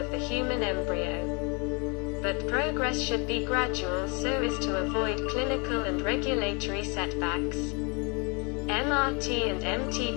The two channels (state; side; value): quieter; right; 33.1 dB